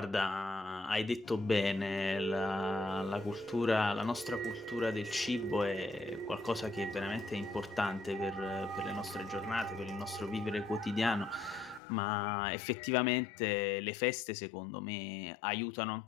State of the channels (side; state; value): right; drops out; at 11.8 s